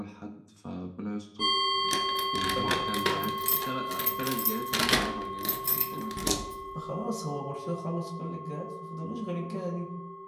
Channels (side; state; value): both; identical; correlation 1.00